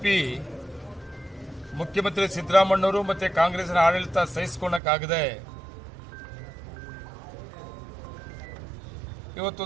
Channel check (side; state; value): left; drops out; at 4.8 s